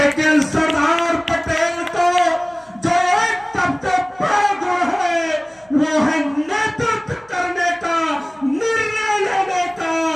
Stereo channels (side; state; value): right; noise; hum, 30 dB below the sound